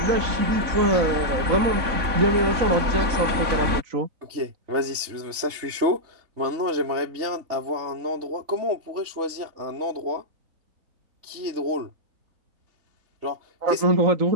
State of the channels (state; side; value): late; left; 3.5 ms